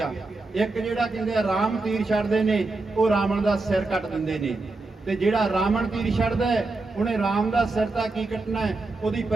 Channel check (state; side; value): quieter; left; 3.4 dB